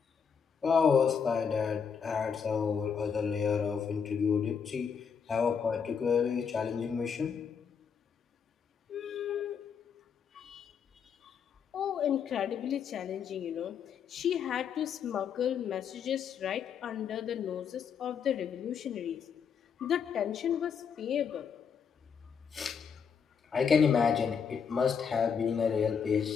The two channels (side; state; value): right; quieter; 6.8 dB